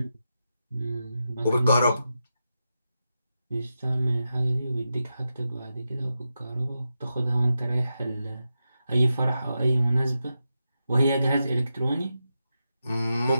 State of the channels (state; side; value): inverted; both; correlation -0.89